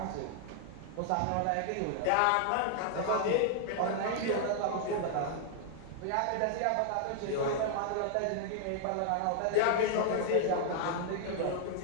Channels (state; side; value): different; both; correlation 0.00